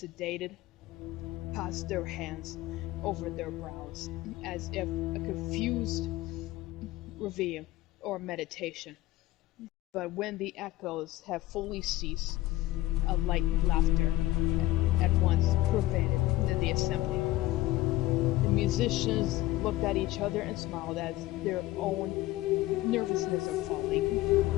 passed their hands over their brows, as if a confused reverie or meditation. But when the echoes have fully ceased, a light laughter at once pervaded the assembly. The musicians looked at each other and smiled as their own nervousness of falling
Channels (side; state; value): right; quieter; 17.0 dB